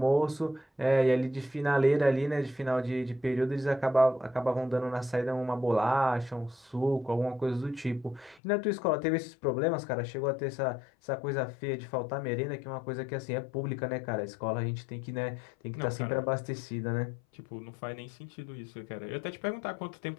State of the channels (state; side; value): drops out; right; at 8.4 s